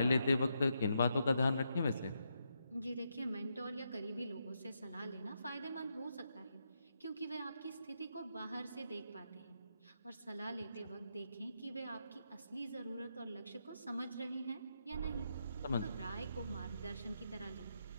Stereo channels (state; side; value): inverted; both; correlation -0.81